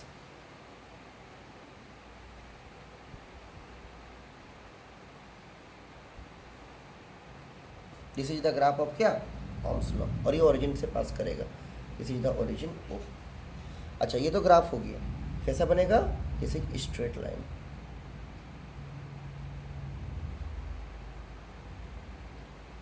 This is the graph of क्या, ओम्स लॉ, और ये ओरिजिन से पास करेगा। This is the origin O. अच्छा, ये तो ग्राफ हो गया, कैसा बनेगा, this is straight line.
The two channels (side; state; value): both; identical; correlation 1.00